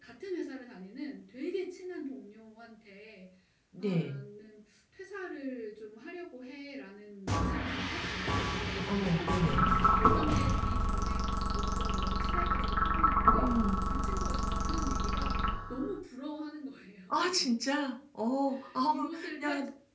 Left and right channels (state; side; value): identical; both; correlation 1.00